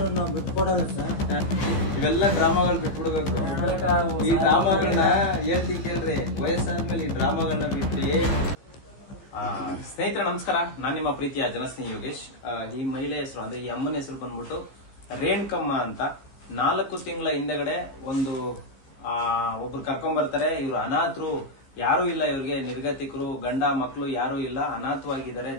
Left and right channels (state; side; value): late; right; 15 ms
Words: ನಾವು ಬಿಟ್ಕೊಡಲ್ಲ ಸರ್. ಇವೆಲ್ಲ ಡ್ರಾಮಾಗಳು ಬಿಟ್ಬಿಡ್ಬೇಕು. ಈ ಡ್ರಾಮಾಗಳನ್ನ ಹೇಳ್ತೀನಿ ಕೇಳ್ರಿ, ವಯಸ್ಸಾದ್ಮೇಲೆ ಈ ಡ್ರಾಮಾಗಳನ್ನ ಬಿಟ್ರಿ. ಸ್ನೇಹಿತರೆ ನಮಸ್ಕಾರ, ನಾನ್ ನಿಮ್ಮ ಪ್ರೀತಿಯ ಜನಸ್ನೇಹಿ ಯೋಗೇಶ್. ಈ ಮಹಿಳೆ ಹೆಸರು ಅಂದ್ರೆ ಈ ಅಮ್ಮನ ಹೆಸರು ಬಂದ್ಬಿಟ್ಟು ರೇಣುಕಮ್ಮ ಅಂತ. 4 ತಿಂಗಳ ಹಿಂದೆಗಡೆ ಒಬ್ರು ಕರ್ಕೊಂಡ್ ಬರ್ತಾರೆ. ಇವ್ರು ಅನಾಥರು, ಯಾರು ಇಲ್ಲ ಇವ್ರಿಗೆ, ನಿರ್ಗತಿಕರು, ಗಂಡ ಮಕ್ಕಳು ಯಾರು ಇಲ್ಲ, ಅನಾಥವಾಗಿದ್ದಾರೆ,